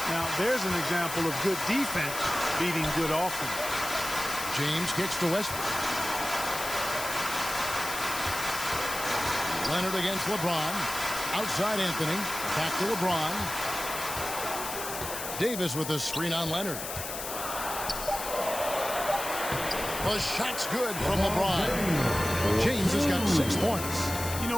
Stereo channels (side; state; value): left; noise; hiss, 7 dB below the sound